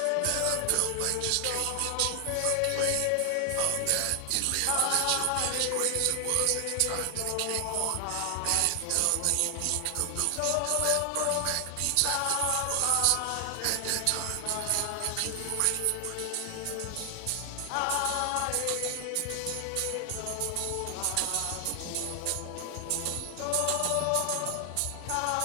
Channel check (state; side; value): different; both; correlation 0.00